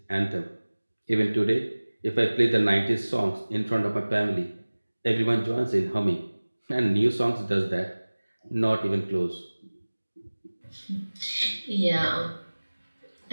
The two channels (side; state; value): both; inverted; correlation -1.00